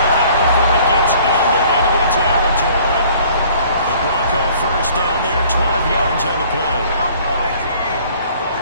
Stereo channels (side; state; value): both; inverted; correlation -0.54